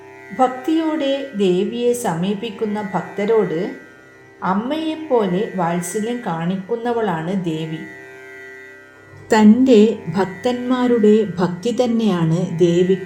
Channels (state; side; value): identical; both; correlation 1.00